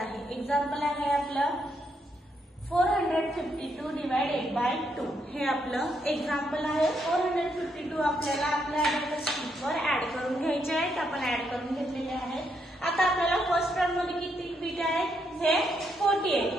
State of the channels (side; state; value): both; normal; correlation 0.77